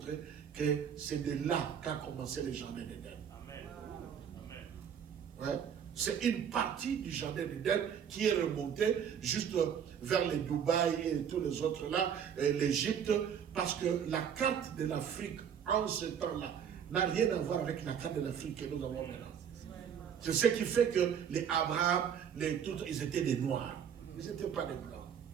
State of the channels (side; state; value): left; quieter; 8.1 dB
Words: que c'est de là qu'a commencé le jardin d'Éden. Amen. Ouais. C'est une partie du jardin d'Éden qui est remontée juste vers les Dubaï et tous les autres là, l'Égypte, parce que la carte de l'Afrique en ce temps-là n'a rien à voir avec la carte de l'Afrique que nous avons maintenant. C'est ce qui fait que les Abraham, ils étaient des Noirs. Ils n'étaient pas des Blancs.